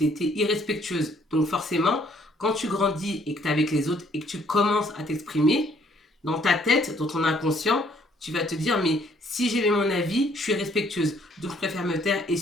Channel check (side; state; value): both; normal; correlation 0.64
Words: étais irrespectueuse. Donc forcément, quand tu grandis et que tu es avec les autres et que tu commences à t'exprimer, dans ta tête, dans ton inconscient, tu vas te dire, mais si j'ai mon avis, je suis respectueuse. Donc je préfère me taire et